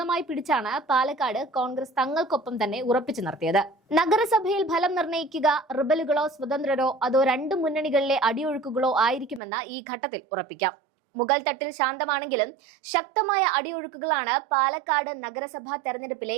പിടിച്ചാണ് പാലക്കാട് കോൺഗ്രസ് തങ്ങൾക്കൊപ്പം തന്നെ ഉറപ്പിച്ചു നിർത്തിയത്. നഗരസഭയിൽ ഫലം നിർണ്ണയിക്കുക റിബലുകളോ സ്വതന്ത്രരോ അതോ രണ്ട് മുന്നണികളിലെ അടിയൊഴുക്കുകളോ ആയിരിക്കുമെന്ന് ഈ ഘട്ടത്തിൽ ഉറപ്പിക്കാം. മുകൾ തട്ടിൽ ശാന്തമാണെങ്കിലും ശക്തമായ അടിയൊഴുക്കുകളാണ് പാലക്കാട് നഗരസഭാ തെരഞ്ഞെടുപ്പിലെ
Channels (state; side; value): drops out; left; at 9.4 s